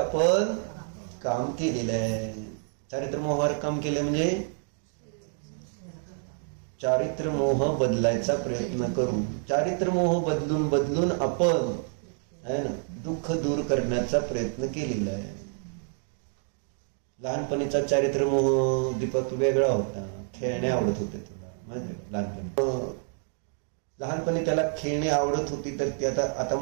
काम केलेलं आहे. चारित्र मोहावर काम केलं म्हणजे चारित्र मोह बदलायचा प्रयत्न करू. चारित्र मोह बदलून आपण है ना दुःख दूर करण्याचा प्रयत्न केलेला आहे. लहानपणीचा चारित्र मोह दीपक वेगळा होता. खेळणे आवडत होते तुला माहिती का? लहानपणी त्याला खेळणे आवडत होती, तर ती आता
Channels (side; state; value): left; silent; 59 dB below the other